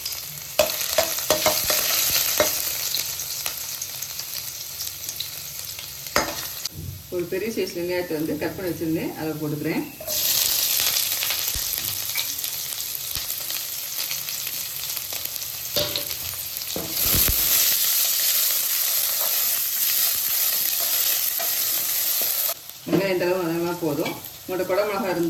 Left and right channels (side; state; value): both; identical; correlation 1.00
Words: ஒரு பெரிய சைஸ் வெங்காயத்தை கட் பண்ணி வச்சுருந்தேன், அதை போட்டுக்கிறேன். வெங்காயம் இந்த அளவு அதெல்லாம் போதும். உங்களோட குடை மிளகா